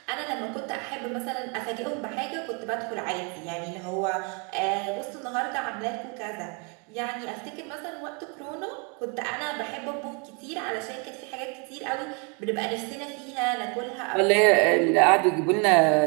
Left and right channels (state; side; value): quieter; left; 34.4 dB